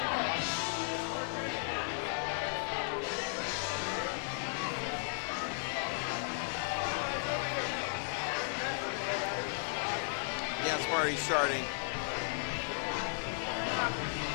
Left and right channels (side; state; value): right; silent; 54 dB below the other